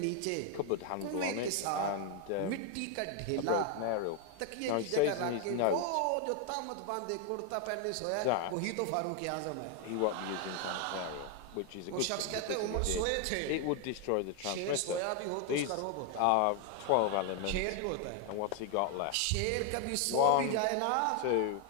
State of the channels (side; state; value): both; different; correlation 0.01